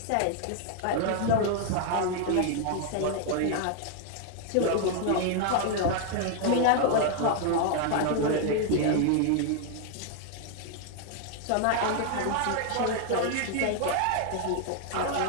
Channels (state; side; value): different; both; correlation 0.00